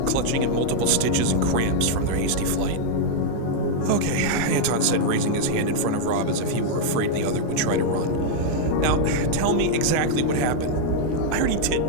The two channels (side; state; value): both; different; correlation -0.01